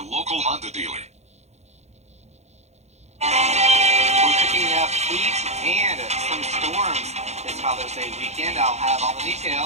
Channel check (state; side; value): late; left; 0.32 ms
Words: local Honda dealer. We're cooking up heat and some storms this Father's Day weekend. I'll have all the